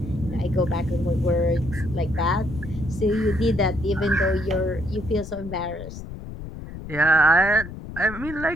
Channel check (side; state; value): left; noise; rumble, 11 dB below the sound